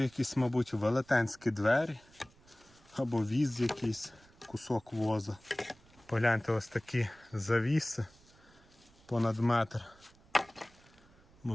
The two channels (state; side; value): noise; right; rumble, 28 dB below the sound